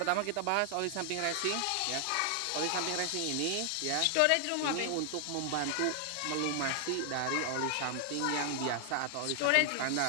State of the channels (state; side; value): different; both; correlation 0.00